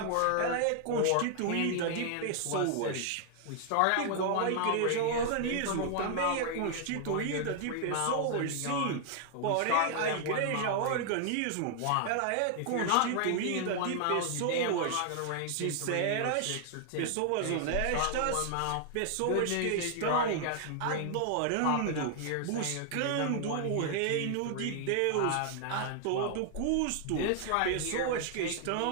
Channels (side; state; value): both; different; correlation 0.00